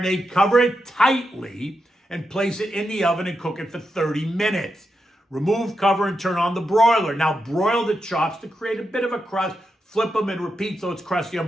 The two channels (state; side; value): normal; both; correlation 0.86